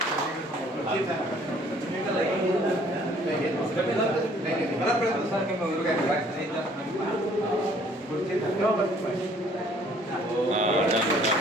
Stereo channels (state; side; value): normal; both; correlation 0.59